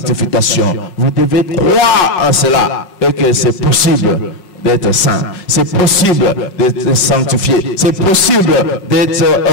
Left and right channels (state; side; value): late; right; 5.5 ms